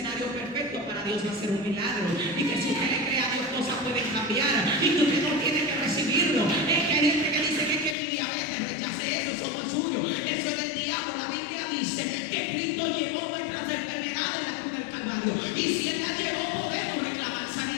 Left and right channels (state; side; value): drops out; right; at 8.0 s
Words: perfecto para Dios hacer un milagro. Y que si usted le cree a Dios, cosas pueden cambiar. Y que usted no tiene que recibirlo. Es que hay gente que dice que mi diabetes, rechace eso no es suyo. Eso es del diablo. La Biblia dice que Cristo llevó nuestras enfermedades en la cruz del Calvario. Y si Él las llevó, podemos reclamar